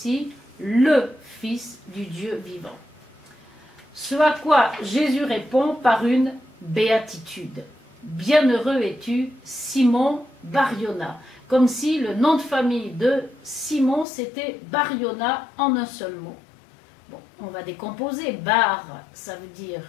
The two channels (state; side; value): drops out; right; at 14.1 s